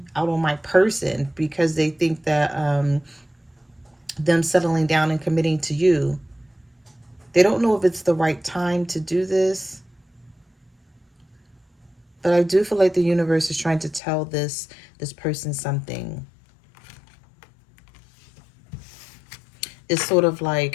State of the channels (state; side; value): drops out; right; at 14.0 s